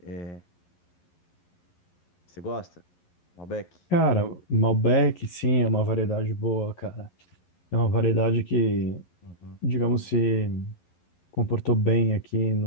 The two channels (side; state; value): right; late; 11 ms